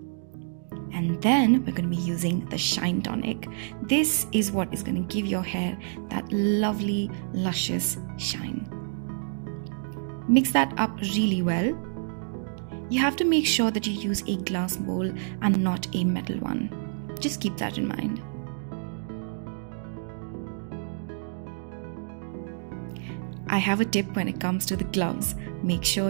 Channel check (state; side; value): silent; left; digital silence